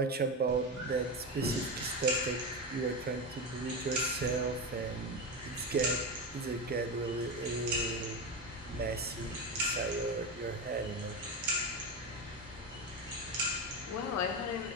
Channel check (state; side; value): normal; both; correlation 0.17